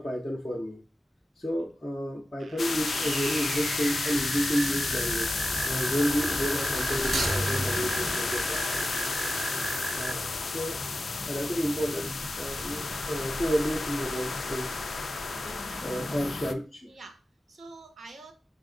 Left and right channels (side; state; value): both; normal; correlation 0.92